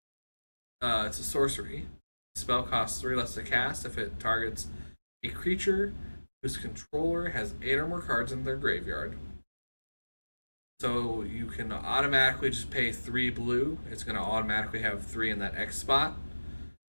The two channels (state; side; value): inverted; both; correlation -1.00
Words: it's a sorcery. The spell costs 3 less to cast if it targets a creature whose controller has 8 or more cards in their graveyard. So you can automatically just pay 3 blue. It's going to automatically have 3 in that X spot.